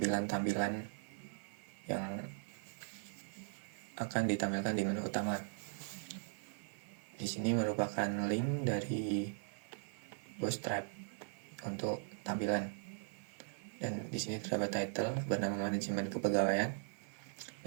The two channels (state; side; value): silent; left; 51 dB below the other